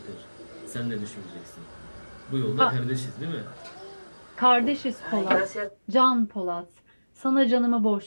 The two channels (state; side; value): inverted; both; correlation -1.00